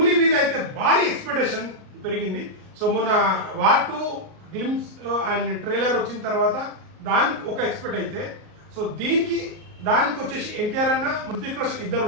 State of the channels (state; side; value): late; left; 38 ms